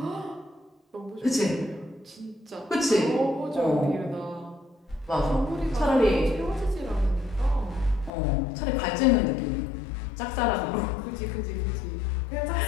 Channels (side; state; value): right; drops out; at 8.1 s